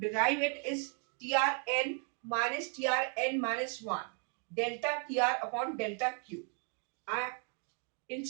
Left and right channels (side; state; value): left; quieter; 39.7 dB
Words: it is TRN minus TRN minus 1 delta TR upon delta Q. In